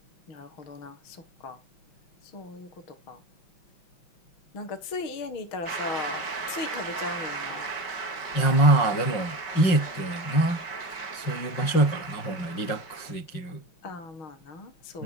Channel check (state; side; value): late; right; 5.6 ms